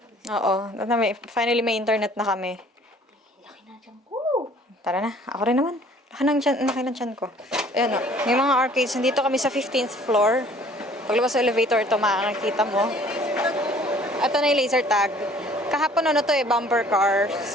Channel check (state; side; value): normal; both; correlation 0.54